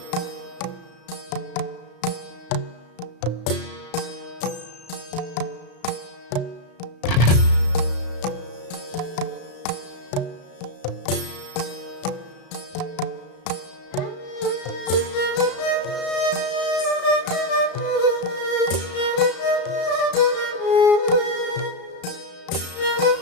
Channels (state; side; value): late; right; 34 ms